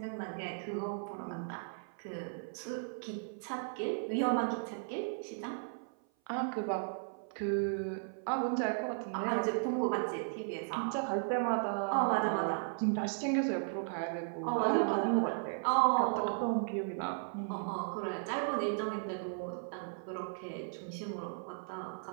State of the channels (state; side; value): silent; left; 54 dB below the other